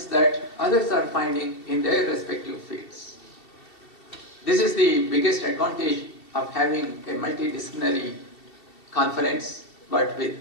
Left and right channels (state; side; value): late; right; 2.7 ms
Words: that others are finding in their respective fields. This is the biggest advantage of having a multidisciplinary conference, but